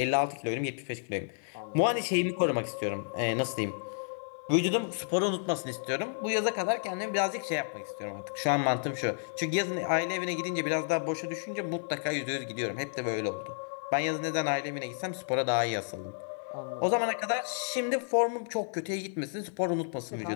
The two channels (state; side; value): silent; right; digital silence